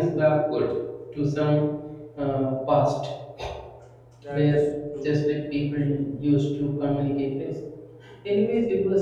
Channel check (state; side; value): identical; both; correlation 1.00